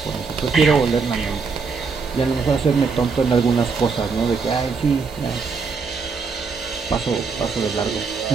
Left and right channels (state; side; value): quieter; left; 5.0 dB